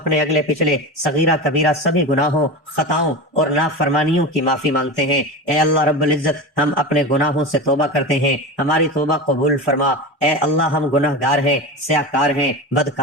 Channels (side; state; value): both; normal; correlation 0.25